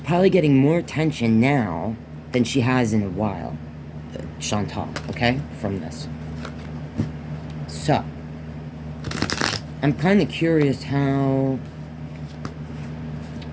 probably getting more attention now than she has in a while. Chantal, okay, from this. So, I'm kind of curious how,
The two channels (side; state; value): both; identical; correlation 1.00